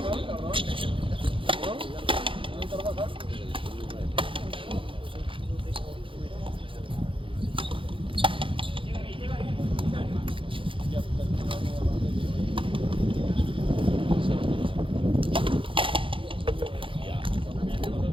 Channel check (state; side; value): late; left; 0.25 ms